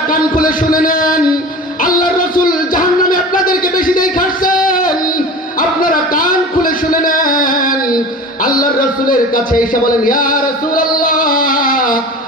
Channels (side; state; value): both; normal; correlation 0.36